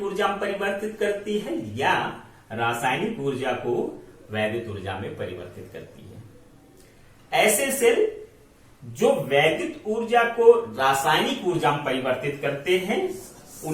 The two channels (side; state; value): both; identical; correlation 1.00